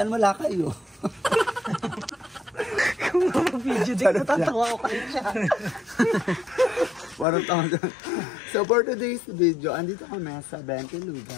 wala kayo. Kung mag-video din, natatawa ko kayo siya. Warang tao dyan. So for today's video, andito kami sa 20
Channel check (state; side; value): drops out; right; at 7.2 s